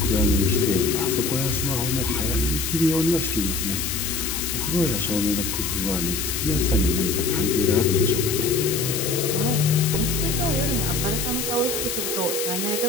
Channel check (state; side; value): noise; left; hiss, 3 dB below the sound